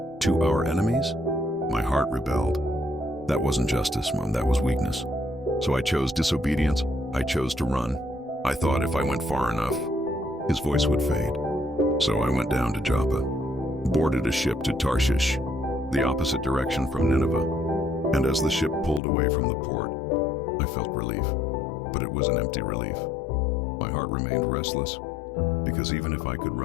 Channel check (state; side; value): drops out; right; at 19.0 s